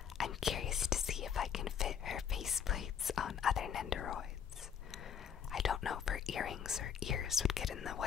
I'm curious to see if I can fit her faceplates on other Nendoroids. I don't know if her earrings or ears would get in the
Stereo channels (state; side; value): quieter; right; 7.9 dB